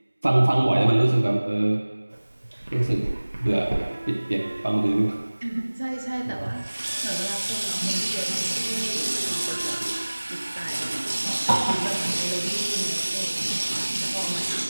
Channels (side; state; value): both; inverted; correlation -1.00